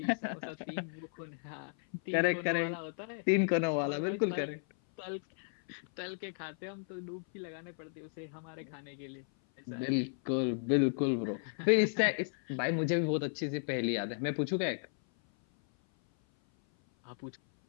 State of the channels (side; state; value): right; silent; 55 dB below the other